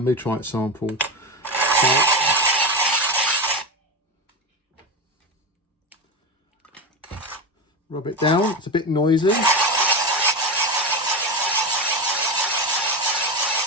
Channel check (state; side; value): normal; both; correlation 0.18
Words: meteorite sample. So, rub it down, it's a bit noisy.